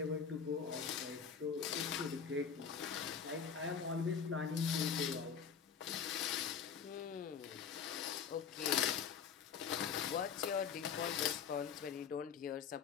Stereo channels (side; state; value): right; quieter; 6.9 dB